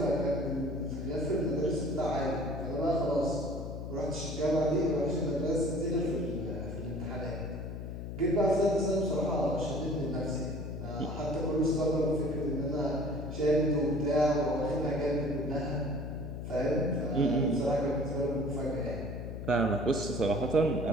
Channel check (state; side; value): noise; left; hum, 7 dB below the sound